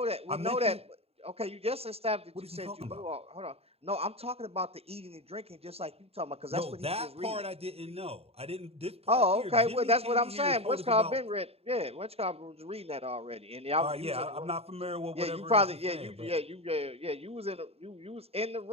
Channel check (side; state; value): left; late; 0.29 ms